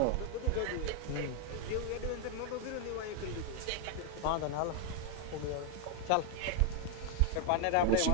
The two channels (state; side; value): different; both; correlation 0.01